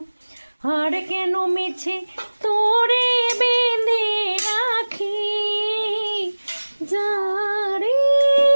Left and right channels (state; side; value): inverted; both; correlation -1.00